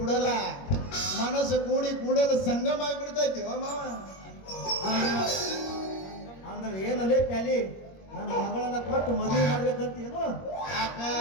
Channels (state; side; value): late; right; 21 ms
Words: ಬಿಡಲ್ಲ, ಮನಸ್ಸು ಕೂಡಲು ಸಂಗಮ ಆಗಿಬಿಡ್ತೈತಿ ಮಾವ. ಅಂದ್ರೆ ಏನಲ್ಲೇ ಪ್ಯಾಲಿ ನನ್ನ ಮಗಳನ್ನ ಕೊಟ್ಟು ಮದುವೆ ಮಾಡ್ಬೇಕಂತೇನು? ಯಾಕ